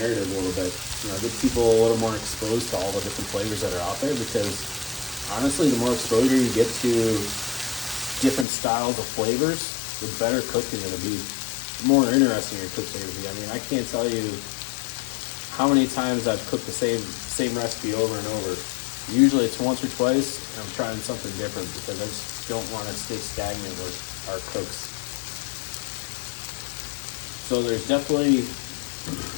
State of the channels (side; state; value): right; drops out; at 8.5 s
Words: a little bit. Get people a little more exposed to all the different flavors that are out there, because honestly, the more exposure you get to different styles of flavors, the better cook you're going to be, the more interesting your cooks are going to be. I mean, I can't tell you how many times I've cooked the same recipe over and over. Usually it's once or twice, and I'm trying something different because I just don't want to stay stagnant with our cooks. So there's definitely